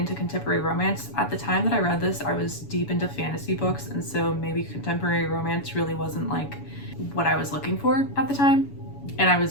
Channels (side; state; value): right; late; 7.0 ms